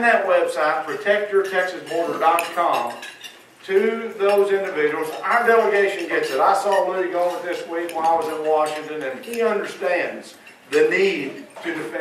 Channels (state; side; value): identical; both; correlation 1.00